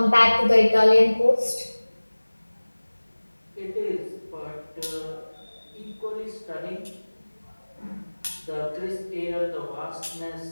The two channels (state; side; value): inverted; both; correlation -1.00